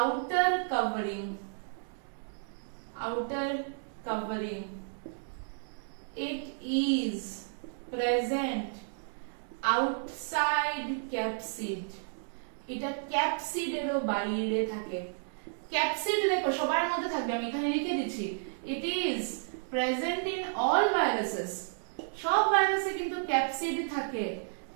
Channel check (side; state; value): left; silent; digital silence